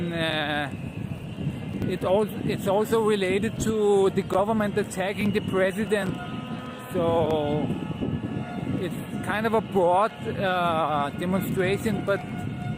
it's also related to the government attacking the president. So it's kind of a broad demonstration, but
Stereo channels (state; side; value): identical; both; correlation 1.00